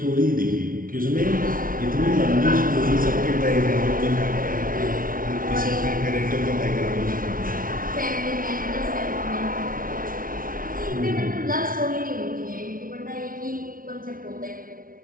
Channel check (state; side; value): late; left; 0.41 ms